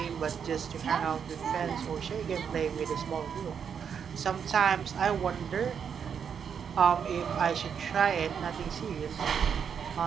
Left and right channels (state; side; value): quieter; left; 7.3 dB